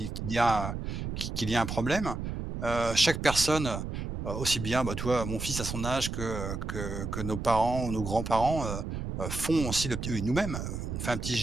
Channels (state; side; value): noise; right; rumble, 5 dB below the sound